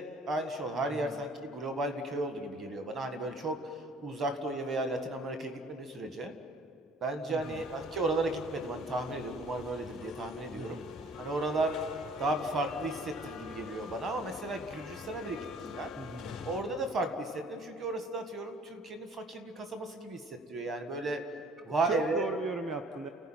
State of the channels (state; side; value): normal; both; correlation 0.54